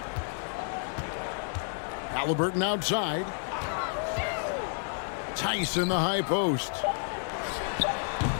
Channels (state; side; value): silent; right; digital silence